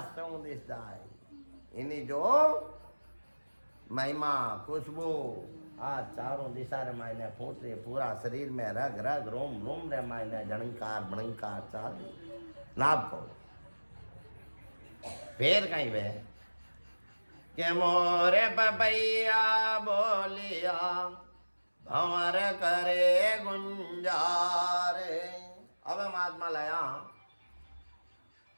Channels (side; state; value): both; inverted; correlation -1.00